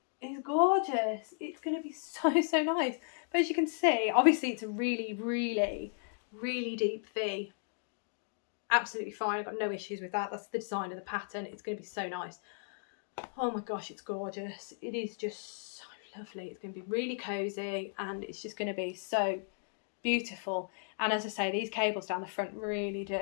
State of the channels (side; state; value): right; silent; digital silence